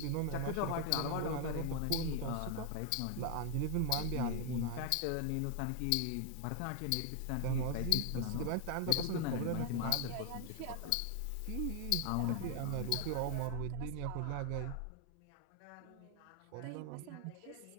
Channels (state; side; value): different; both; correlation 0.00